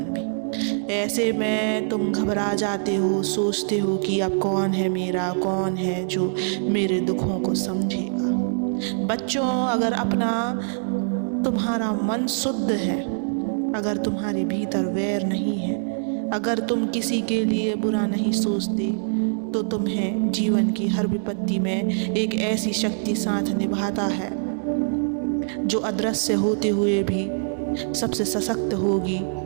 भी। ऐसे में तुम घबरा जाते हो, सोचते हो कि अब कौन है मेरा, कौन है जो मेरे दुखों को समझेगा। बच्चों, अगर तुम्हारा मन शुद्ध है, अगर तुम्हारे भीतर वैर नहीं है, अगर तुम किसी के लिए बुरा नहीं सोचते, तो तुम्हें जीवन की हर विपत्ति में एक ऐसी शक्ति साथ निभाता है जो अदृश्य होते हुए भी सबसे सशक्त होगी।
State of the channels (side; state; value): left; silent; digital silence